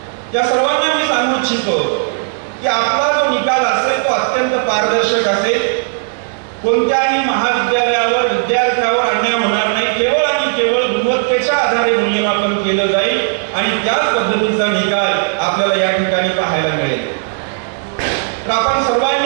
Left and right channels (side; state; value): left; silent; 69 dB below the other